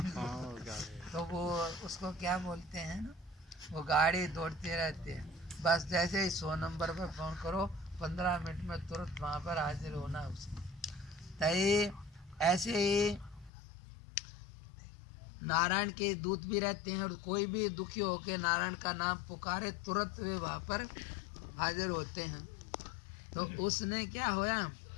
तो वो उसको क्या बोलते हैं ना, वो गाड़ी दौड़ते रहते हैं। बस जैसे ही 100 नंबर पर फोन करो 15 मिनट में तुरंत वहाँ पर हाजिर होना उसको। तय ऐसे ही नारायण के दूत भी रहते हैं और कोई भी दुखी होकर नारायण का नाम पुकारे तुरंत वे वहाँ पर हाजिर होते हैं। तो उसने क्या होया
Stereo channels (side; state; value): right; drops out; at 13.5 s